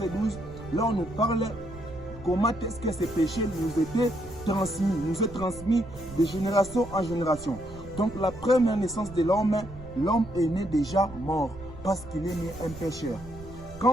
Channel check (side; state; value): right; noise; rumble, 15 dB below the sound